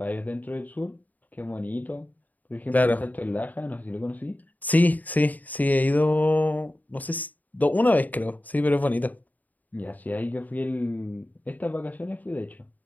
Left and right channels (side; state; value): right; late; 0.080 ms